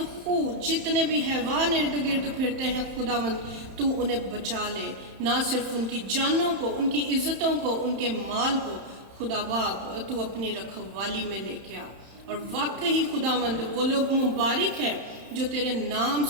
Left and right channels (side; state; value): left; late; 31 ms